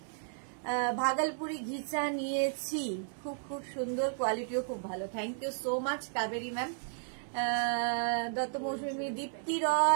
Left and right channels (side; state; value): left; silent; digital silence